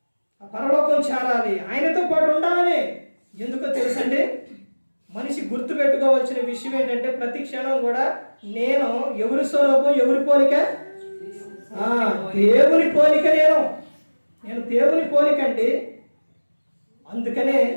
పరలోకం చేరాలి, ఆయనతో పాటు ఉండాలని. ఎందుకో తెలుసండి, మనిషి గుర్తు పెట్టుకోవాల్సిన విషయం ఏంటంటే ప్రతి క్షణం కూడా నేను ఎవరి స్వరూపం, ఎవరి పోలిక? దేవుని పోలిక. నేను దేవుని పోలిక అండి. అందుకనే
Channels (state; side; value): inverted; both; correlation -1.00